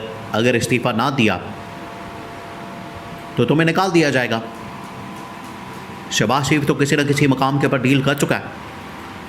अगर इस्तीफ़ा ना दिया तो तुम्हें निकाल दिया जाएगा। शहबाज शरीफ तो किसी न किसी मकाम के ऊपर डील कर चुका है।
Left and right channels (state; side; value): identical; both; correlation 1.00